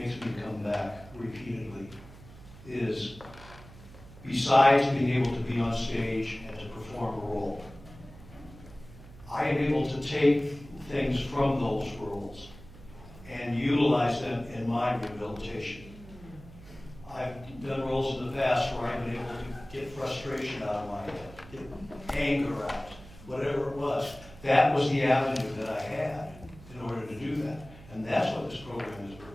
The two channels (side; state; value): right; noise; hum, 18 dB below the sound